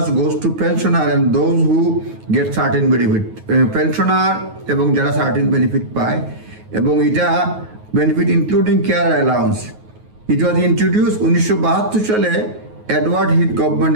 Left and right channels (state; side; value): late; left; 9.4 ms